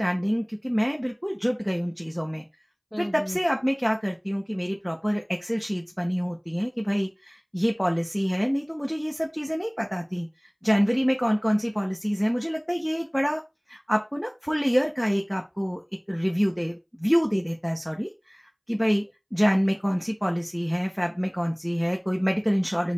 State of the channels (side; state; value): both; identical; correlation 1.00